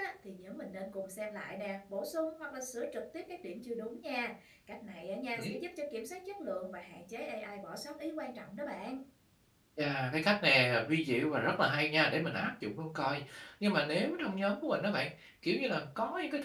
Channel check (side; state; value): both; identical; correlation 1.00